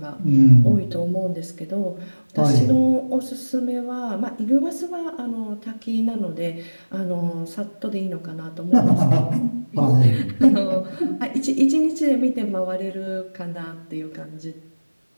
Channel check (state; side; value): inverted; both; correlation -1.00